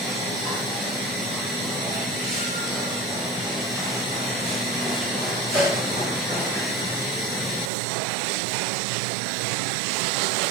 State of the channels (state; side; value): drops out; left; at 7.7 s